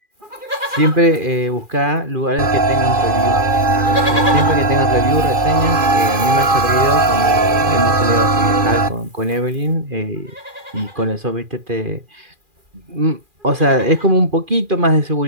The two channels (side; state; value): left; late; 2.4 ms